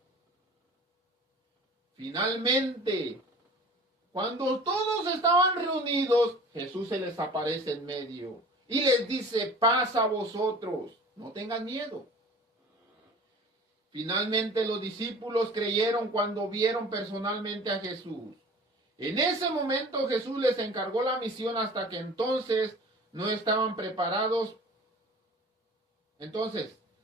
Finalmente, cuando todos estaban reunidos, Jesús se les aparece en medio y les dice, paz a vosotros, no tengan miedo. Finalmente los discípulos creyeron cuando vieron personalmente a Jesús. En ese momento Jesús les encargó la misión hasta que entonces no estaban preparados.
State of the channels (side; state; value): both; normal; correlation 0.43